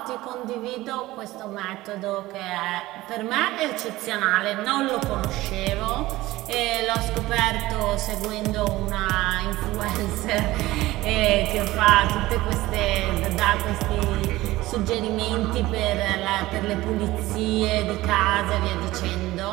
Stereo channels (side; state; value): left; quieter; 17.9 dB